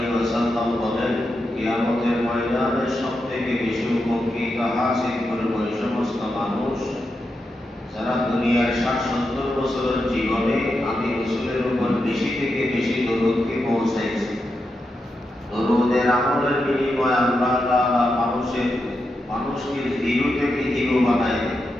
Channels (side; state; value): both; normal; correlation 0.86